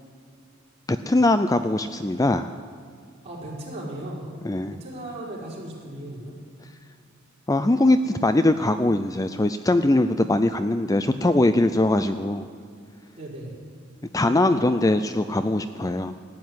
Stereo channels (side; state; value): both; normal; correlation 0.80